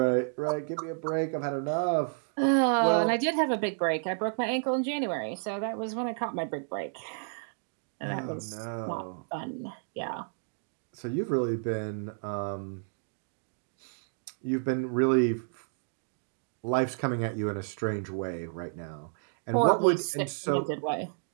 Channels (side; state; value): left; silent; digital silence